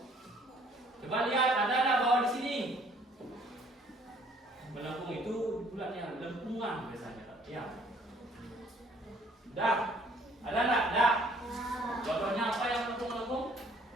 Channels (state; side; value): normal; both; correlation 0.59